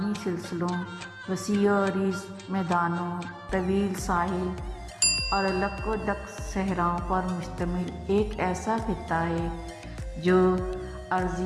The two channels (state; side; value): identical; both; correlation 1.00